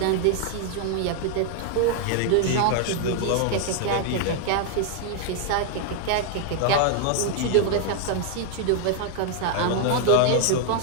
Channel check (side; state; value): both; different; correlation 0.00